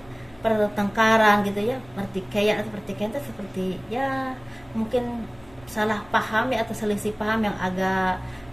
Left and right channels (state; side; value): noise; right; rumble, 25 dB below the sound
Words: gitu ya, pertikaian itu seperti ya mungkin salah paham ya, atau selisih paham yang agak